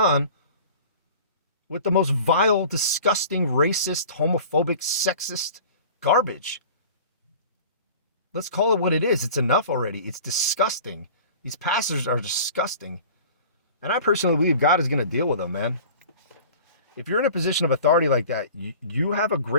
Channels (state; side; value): inverted; both; correlation -0.42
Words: with the most vile, disgusting, racist, homophobic, sexist garbage. Let's call it what it is. It's enough already. It's disgusting. These pastors are disgusting. And I personally believe God is going to deal with them, man. If you're in a position of authority like that, you have a